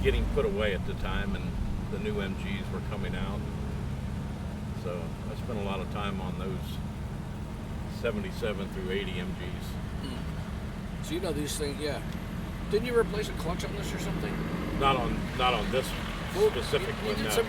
getting put away at the time, and the new MGs were coming out. So I spent a lot of time on those 77 through 80 MGs. So you know these things, yeah. Didn't you replace a clutch on this or something? Not on this specific you one. did No. some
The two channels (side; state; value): both; identical; correlation 1.00